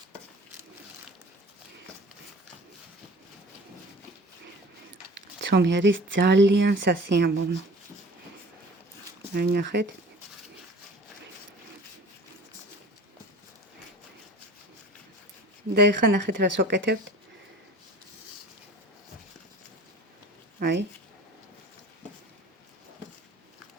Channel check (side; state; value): both; normal; correlation 0.44